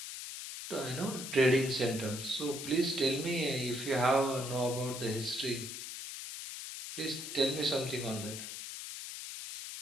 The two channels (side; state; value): left; noise; hiss, 8 dB below the sound